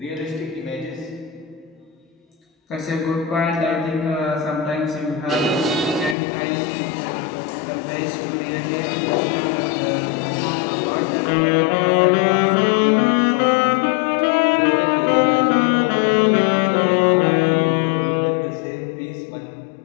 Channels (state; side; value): drops out; right; at 6.2 s